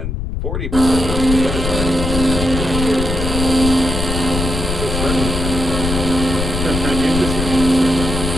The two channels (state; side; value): noise; left; rumble, 3 dB below the sound